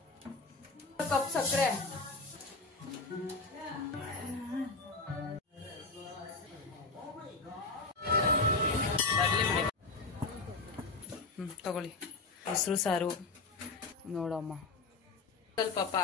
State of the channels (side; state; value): right; quieter; 3.8 dB